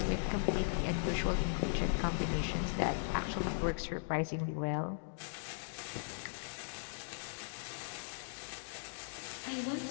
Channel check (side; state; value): right; silent; digital silence